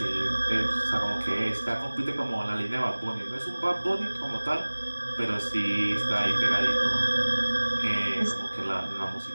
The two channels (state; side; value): inverted; both; correlation -1.00